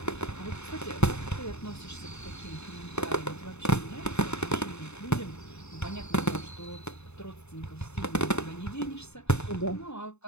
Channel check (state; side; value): late; right; 0.81 ms